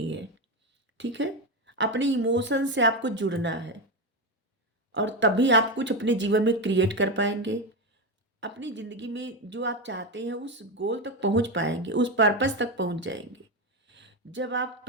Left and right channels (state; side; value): normal; both; correlation 0.13